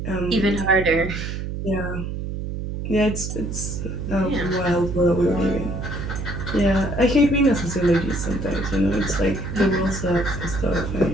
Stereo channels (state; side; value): noise; right; hum, 5 dB below the sound